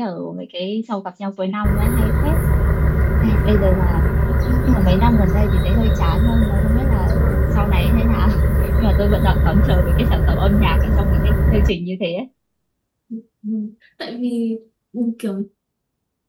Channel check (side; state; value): both; identical; correlation 1.00